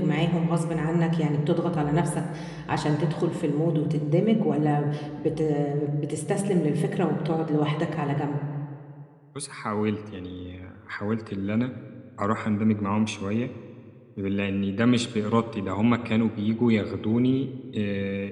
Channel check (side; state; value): both; identical; correlation 1.00